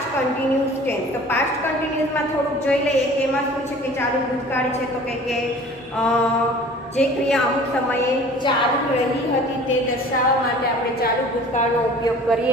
કન્ટિન્યુઅસ ટેન્સ. તો પાસ્ટ કન્ટિન્યુઅસમાં થોડુંક જોઈ લઈએ કે એમાં શું છે કે ચાલુ ભૂતકાળ છે. તો કે જે ક્રિયા અમુક સમયે ચાલુ રહી હતી તે દર્શાવવા માટે આપણે ચાલુ ભૂતકાળનો ઉપયોગ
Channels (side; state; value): both; normal; correlation 0.46